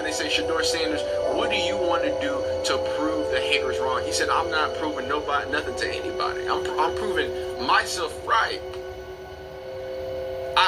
they said, Shador Sanders, what do you want to do to prove the haters wrong? He said, I'm not proving nothing to anybody. I'm proving myself right.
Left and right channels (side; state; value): both; identical; correlation 1.00